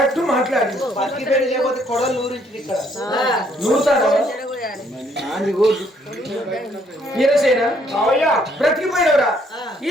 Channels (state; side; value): normal; both; correlation 0.67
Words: మాట్లాడి వీరసేన, బ్రతికిపోయినవరా? ఈ